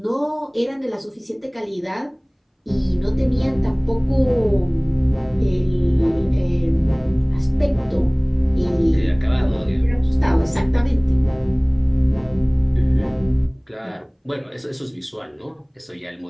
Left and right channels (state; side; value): identical; both; correlation 1.00